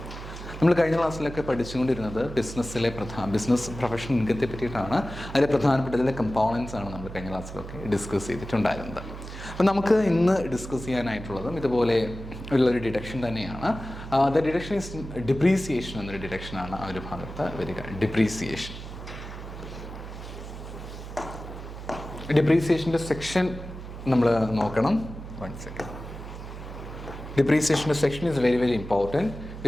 നമ്മൾ കഴിഞ്ഞ ക്ലാസ്സിലൊക്കെ പഠിച്ചുകൊണ്ടിരുന്നത് ബിസിനസ് പ്രൊഫഷണൽ ഇൻകത്തെ പറ്റിയിട്ടാണ്. അതിലെ പ്രധാനപ്പെട്ട ഇതിലെ കമ്പോണൻസ് ആണ് നമ്മൾ കഴിഞ്ഞ ക്ലാസ്സിലൊക്കെ ഡിസ്കസ് ചെയ്തിട്ടുണ്ടായിരുന്നത്. അപ്പം നമുക്ക് ഇന്ന് ഡിസ്കസ് ചെയ്യാനായിട്ടുള്ളതും ഇതുപോലെ ഉള്ളൊരു ഡിഡക്ഷൻ തന്നെയാണ്. ദ ഡിഡക്ഷൻ ഈസ് ഡിപ്രീസിയേഷൻ എന്നൊരു ഡിഡക്ഷനാണ് ആ ഒരു ഭാഗത്ത് വരിക. ഡിപ്രീസിയേഷൻ്റെ സെക്ഷൻ നമ്മൾ നോക്കണം. 1 second. Depreciation section is very, very important.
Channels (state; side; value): noise; right; hum, 11 dB below the sound